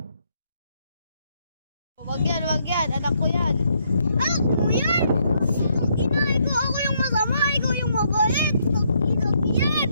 Oh, wag yan.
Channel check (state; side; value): inverted; both; correlation -0.73